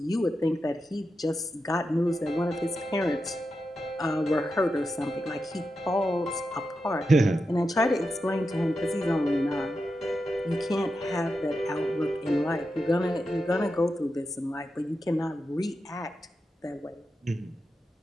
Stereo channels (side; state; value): both; normal; correlation 0.89